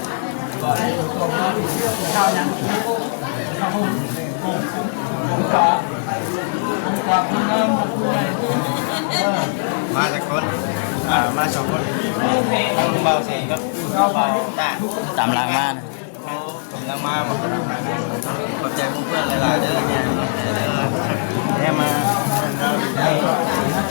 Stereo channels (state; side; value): silent; right; 66 dB below the other